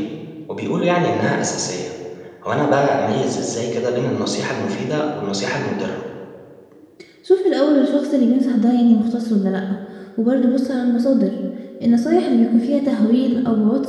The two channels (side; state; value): both; identical; correlation 1.00